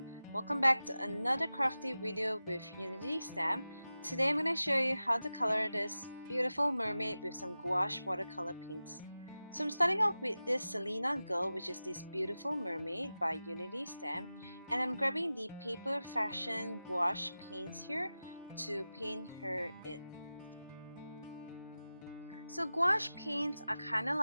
Welcome back to another crafty video with Unity Stamp. Today I'm going to show you how to color this beautiful mermaid with some gouache watercolor paints. So I'm starting off with this Salina girl, which is this beautiful mermaid by Unity Stamp, and I'm grabbing the paper Fashion Gouache paints here to paint her in. So gouache paints are kind of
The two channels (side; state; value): both; inverted; correlation -0.95